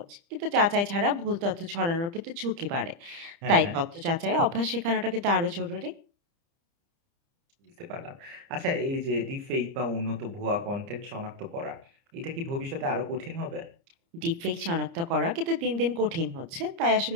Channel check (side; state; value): left; late; 30 ms